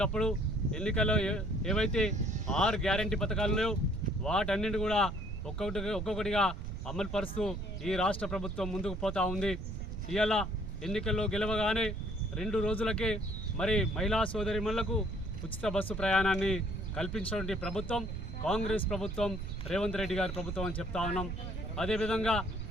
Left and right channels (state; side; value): noise; right; rumble, 6 dB below the sound